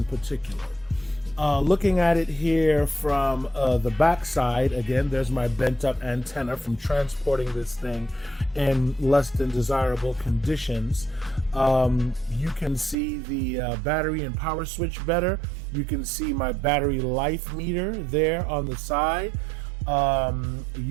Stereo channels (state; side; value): drops out; left; at 13.0 s